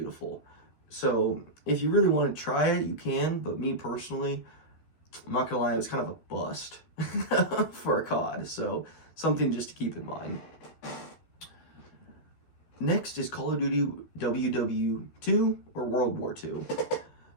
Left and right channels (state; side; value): late; right; 13 ms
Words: So if you really want to try it, you can, but me personally, I'm not gonna lie, it was kind of a bust for a COD, so something just to keep in mind. Next is Call of Duty WW2 or World War II.